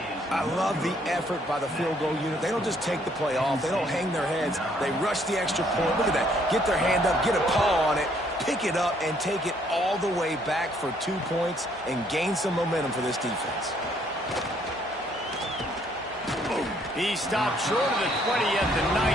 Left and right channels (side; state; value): both; normal; correlation 0.66